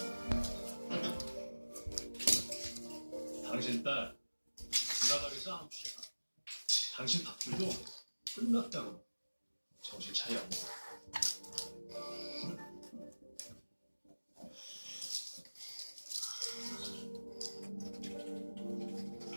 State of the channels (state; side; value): inverted; both; correlation -1.00